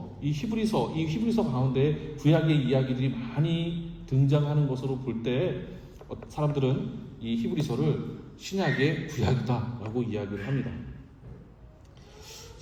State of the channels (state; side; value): identical; both; correlation 1.00